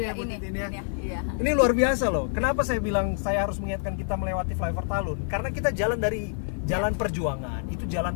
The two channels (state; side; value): silent; right; 60 dB below the other